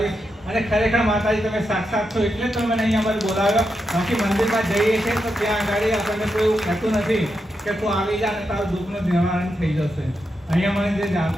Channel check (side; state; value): both; normal; correlation 0.86